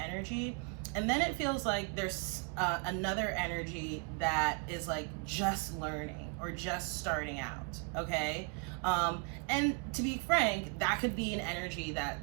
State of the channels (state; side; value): quieter; left; 34.9 dB